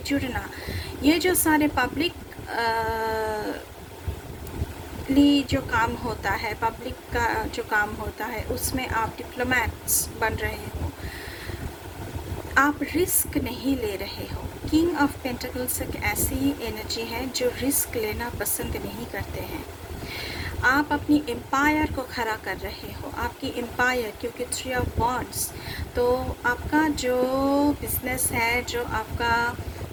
जुड़ना, ये जो सारे पब्लिक जो काम होता है, पब्लिक का जो काम होता है, उसमें आप डिप्लोमेट्स बन रहे हो। आप रिस्क नहीं ले रहे हो। किंग ऑफ पेंटिकल्स एक ऐसी एनर्जी है जो रिस्क लेना पसंद नहीं करते हैं। आप अपनी एम्पायर को खड़ा कर रहे हो, आपकी एम्पायर, क्योंकि 3 ऑफ वॉन्ड्स, तो आपका जो बिजनेस है, जो आपका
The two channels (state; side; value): identical; both; correlation 1.00